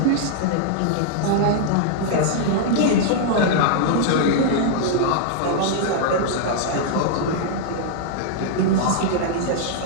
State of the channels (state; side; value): different; both; correlation -0.01